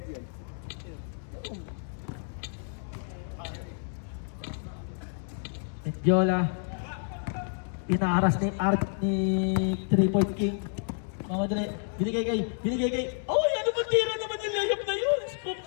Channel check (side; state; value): right; silent; digital silence